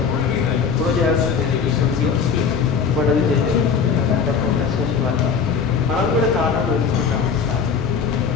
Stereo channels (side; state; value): right; quieter; 6.1 dB